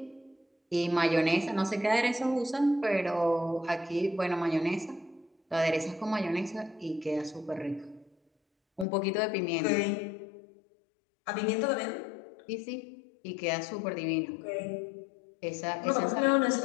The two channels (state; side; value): drops out; right; at 8.8 s